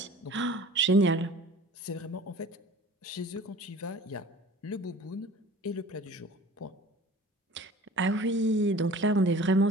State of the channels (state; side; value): normal; both; correlation 0.45